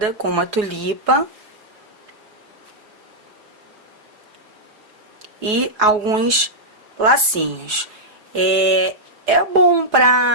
com uma tulipa e alguns lacinhos. É bom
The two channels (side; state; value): left; late; 4.7 ms